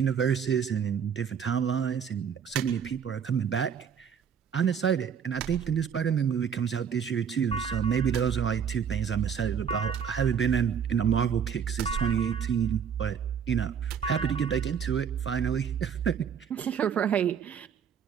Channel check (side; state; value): left; quieter; 7.5 dB